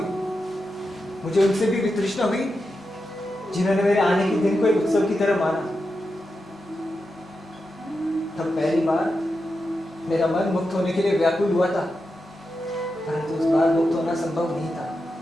मुझे उनसे भी वितृष्णा हुई जिन्होंने मेरे आने के दिन को एक उत्सव की तरह माना। तब पहली बार मेरा मन मुक्त होने के लिए व्याकुल हुआ था, परंतु उस बार मुक्त होना संभव नहीं था।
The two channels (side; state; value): both; normal; correlation 0.89